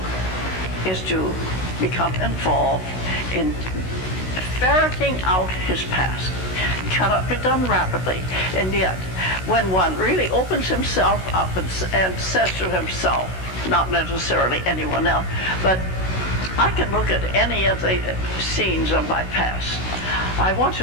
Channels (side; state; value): right; late; 16 ms